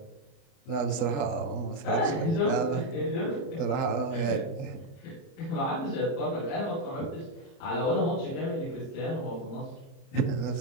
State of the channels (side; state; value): right; late; 30 ms